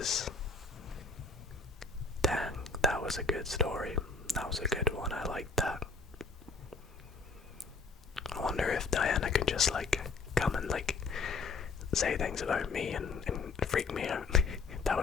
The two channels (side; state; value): right; quieter; 4.4 dB